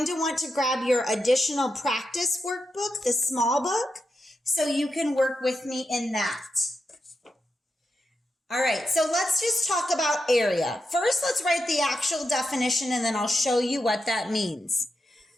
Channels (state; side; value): normal; both; correlation 0.87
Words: to want to grab your additional practice workbook, the small book, so you can work with me in that. All right, so let's just talk about area. First, let's write the actual definition, and then I'll show you what that means.